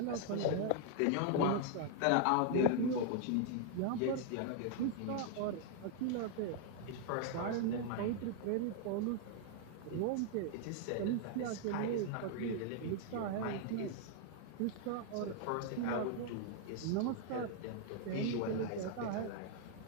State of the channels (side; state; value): both; different; correlation 0.00